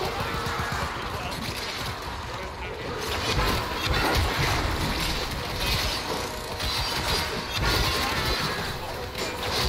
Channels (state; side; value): identical; both; correlation 1.00